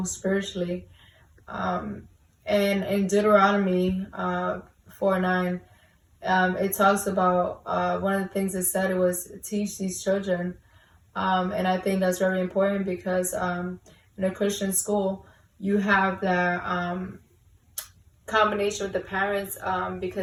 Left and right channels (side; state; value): both; identical; correlation 1.00